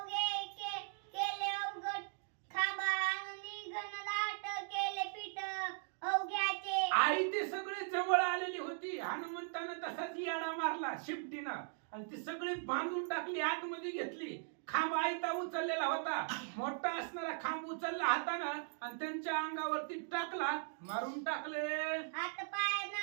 केले अवघड खांबा आणि घनदाट केले पीठ अवघ्याचे. आई ते सगळे जवळ आलेली होती. हनुमंतानं तसाच याडा मारला शिपटीनं आणि ती सगळी बांधून टाकली, आतमध्ये घेतली. खांब आयता उचललेला होता, मोठा असणारा खांब उचलला हातानं आणि त्यांच्या अंगावरती टाकला, मारून टाकले. हात पाय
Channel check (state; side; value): silent; left; digital silence